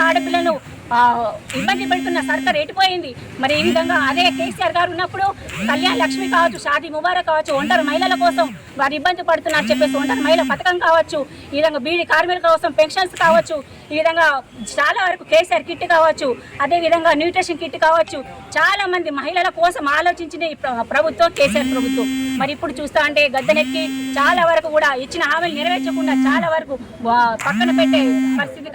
ఆడపిల్లను ఇబ్బంది పెడుతున్న సర్కార్ ఎటుపోయింది? ఈ విధంగా అదే కేసీఆర్ గారు ఉన్నప్పుడు కళ్యాణ లక్ష్మి కావచ్చు, షాదీ ముబారక్ కావచ్చు, ఒంటరి మహిళల కోసం వారు ఇబ్బంది పడుతున్నారు చెప్పేసి ఒంటరి మహిళ పథకం కావచ్చు, ఈ విధంగా బీడీ కార్మికుల కోసం పెన్షన్స్ కావచ్చు, ఈ విధంగా చాలా వరకు కేసీఆర్ కిట్ కావచ్చు, అదేవిధంగా న్యూట్రిషన్ కిట్ కావచ్చు, చాలా మంది మహిళల కోసం ఆలోచించిన ఈ ప్రభుత్వం కేసీఆర్ ప్రభుత్వం. ఇప్పుడు చూస్తా అంటే గద్దెనెక్కి చాలా వరకు కూడా ఇచ్చిన హామీలు నెరవేర్చకుండా చాలా వరకు పక్కన పెట్టే పరిస్థితి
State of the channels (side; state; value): both; identical; correlation 1.00